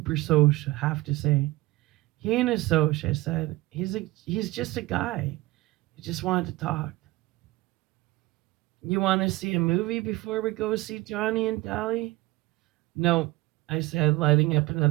Soch have to say? He ain't a Soch, I said. He's just a guy. He just wanted to talk. You want to see a movie before we go see Johnny and Dolly? No, I said, lighting up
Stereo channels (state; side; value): quieter; left; 20.0 dB